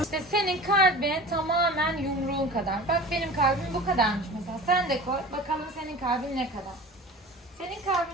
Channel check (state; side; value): normal; both; correlation 0.38